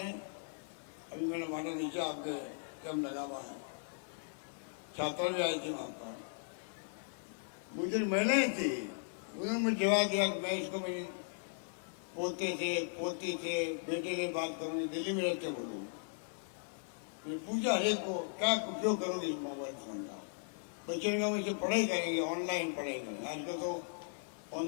अभी मैंने बांटा, नीचे आपके कैंप लगा हुआ है, छात्र भी आई थी वहाँ पर, बुजुर्ग महिलाएं थी, उन्होंने मुझे जवाब दिया कि मैं इसको मेरी पोते से, पोती से, बेटे से बात करूँगी, दिल्ली में रहते हैं वो लोग। मैंने पूछा हर एक को, क्या उपयोग करोगे इस मोबाइल फ़ोन का? बच्चों ने कहा इसे पढ़ाई करेंगे, ऑनलाइन पढ़ाई करेंगे। आजकल तो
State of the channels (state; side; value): silent; right; digital silence